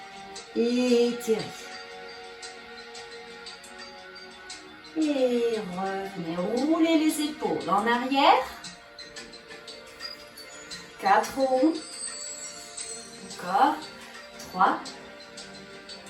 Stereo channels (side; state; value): both; identical; correlation 1.00